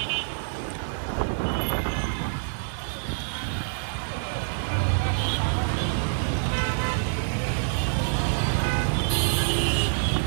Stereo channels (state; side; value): silent; left; digital silence